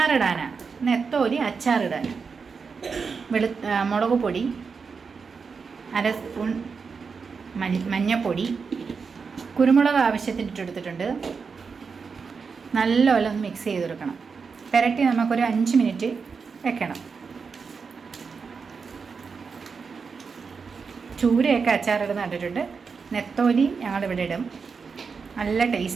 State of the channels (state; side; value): quieter; left; 5.3 dB